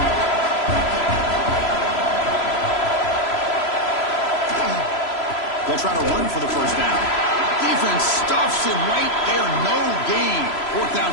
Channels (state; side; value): late; right; 3.0 ms